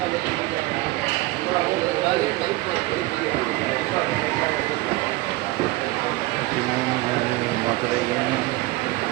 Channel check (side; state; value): left; quieter; 19.9 dB